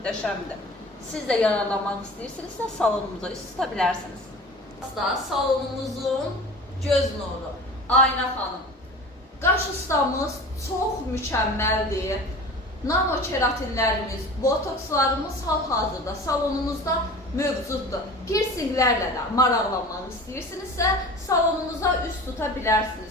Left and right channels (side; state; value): both; normal; correlation 0.38